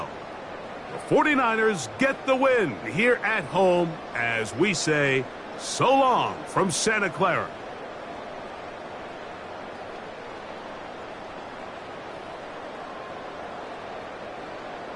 The 49ers get the win here at home as we say so long from Santa Clara.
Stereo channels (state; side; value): identical; both; correlation 1.00